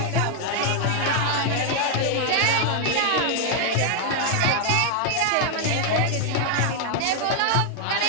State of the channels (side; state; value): both; different; correlation 0.00